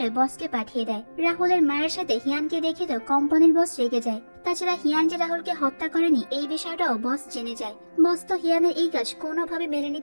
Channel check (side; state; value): both; inverted; correlation -1.00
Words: বসকে পাঠিয়ে দেয়। রাহুলের মায়ের সাথে হিয়ানকে দেখে তো কোম্পানির বস রেগে যায়, তাছাড়া হিয়ান যে রাহুলকে হত্যা করেনি এই বিষয়টাও বস জেনে যায়। বস তো হিয়ানের এই কাজ কোনোভাবে মেনে